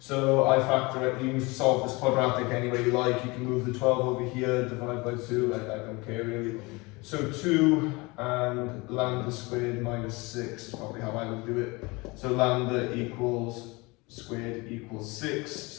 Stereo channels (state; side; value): quieter; right; 25.1 dB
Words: I factor it, you can solve this quadratic any way you like, you can move the 12 over here, divide by 2, I don't care really. So 2 and lambda squared minus 6 is probably how I would do it. So lambda equals squared equals 6,